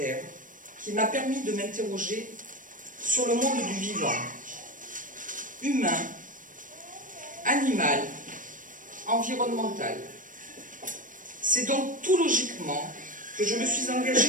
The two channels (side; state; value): left; late; 0.38 ms